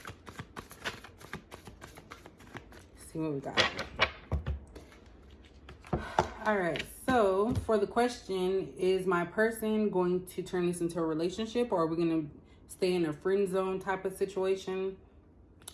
See what we got. All right, so for the question, is my person going to turn this into a relationship, or are we going to stay in a friend zone type of situation?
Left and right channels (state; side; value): identical; both; correlation 1.00